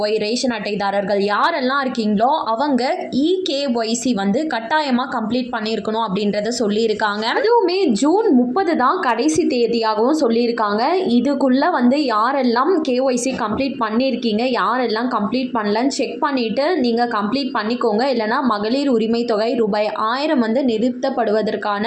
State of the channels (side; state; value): both; identical; correlation 1.00